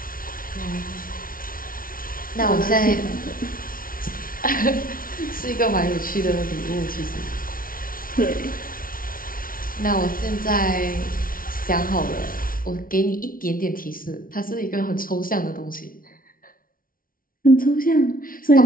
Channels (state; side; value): late; right; 0.42 ms